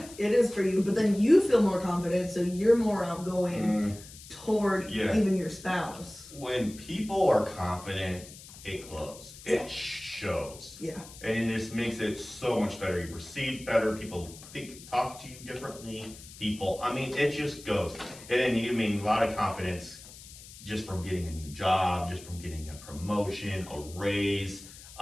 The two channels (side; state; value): left; noise; hiss, 17 dB below the sound